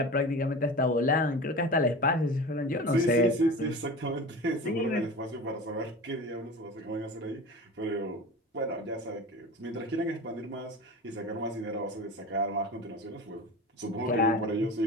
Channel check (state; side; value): normal; both; correlation 0.33